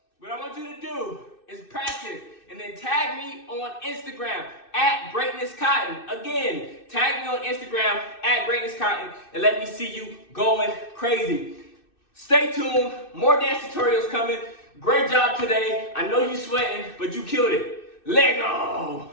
What I want you to do is practice and then tag me on Instagram at Greatness Cotton. Again, tag me on Instagram at Greatness Cotton and let me see you going crazy. Stay tuned. More dance tutorials coming. Great job today. I know you're sweating, but you killed it. Let go.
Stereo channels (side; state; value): right; late; 2.6 ms